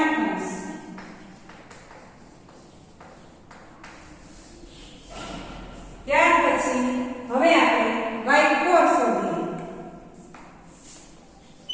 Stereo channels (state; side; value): identical; both; correlation 1.00